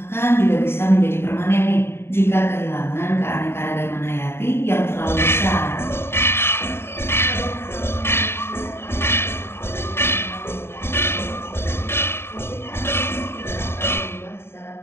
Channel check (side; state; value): right; late; 0.12 ms